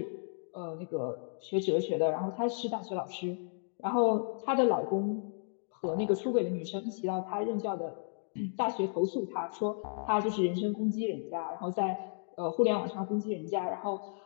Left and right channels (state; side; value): silent; right; digital silence